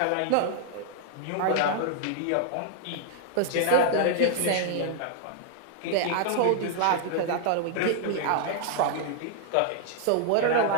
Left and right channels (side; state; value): both; different; correlation 0.00